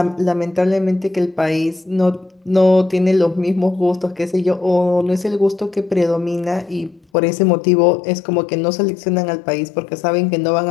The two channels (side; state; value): right; drops out; at 7.0 s